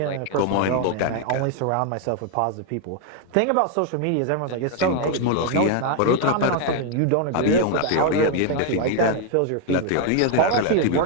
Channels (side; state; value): both; different; correlation 0.00